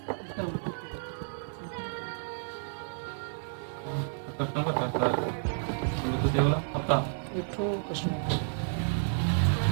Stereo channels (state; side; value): silent; left; digital silence